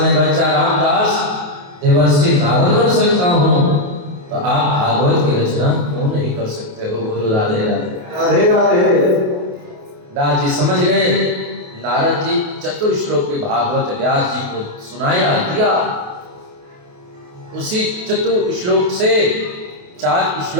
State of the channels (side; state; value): left; late; 28 ms